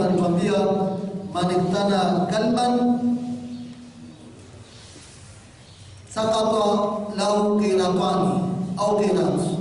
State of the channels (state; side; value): identical; both; correlation 1.00